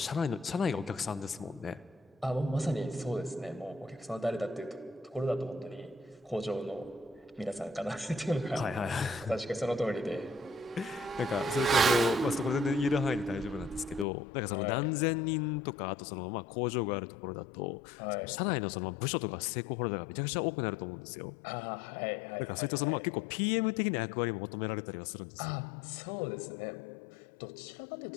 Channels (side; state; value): right; drops out; at 14.1 s